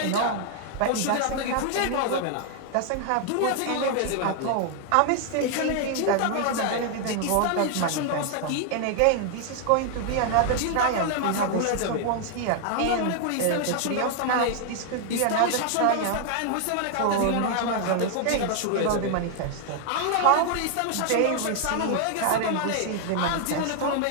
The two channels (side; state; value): both; different; correlation 0.00